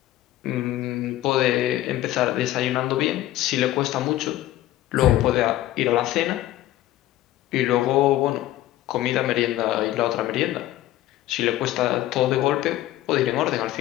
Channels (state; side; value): quieter; right; 14.6 dB